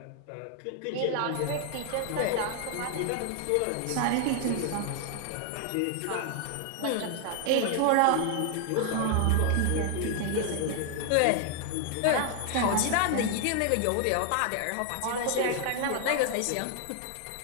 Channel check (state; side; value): different; both; correlation 0.00